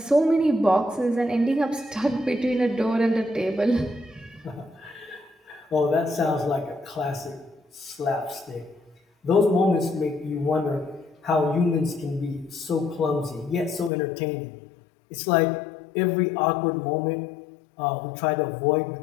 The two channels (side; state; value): right; drops out; at 13.9 s